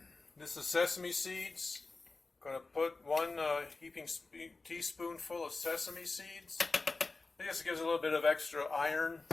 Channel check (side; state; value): right; quieter; 3.7 dB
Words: This is sesame seeds. I'm going to put 1 heaping teaspoonful of sesame seeds. I guess it gives a little bit of extra iron.